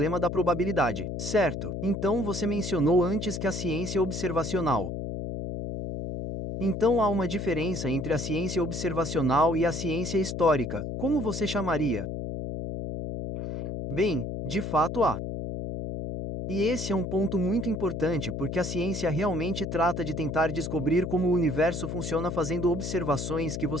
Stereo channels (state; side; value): noise; left; hum, 5 dB below the sound